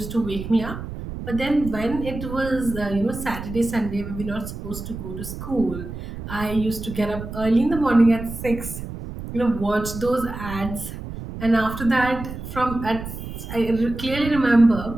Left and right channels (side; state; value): right; noise; rumble, 9 dB below the sound